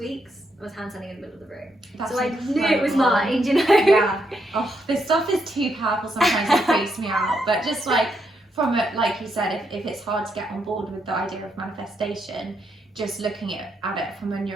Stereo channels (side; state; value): both; normal; correlation 0.79